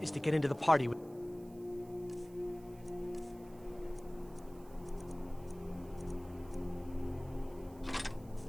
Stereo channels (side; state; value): right; noise; hiss, 25 dB below the sound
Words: is to get into the party with...